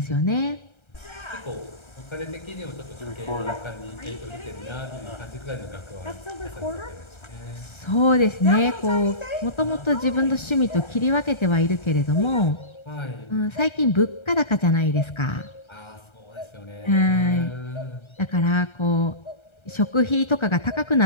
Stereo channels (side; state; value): right; late; 1.3 ms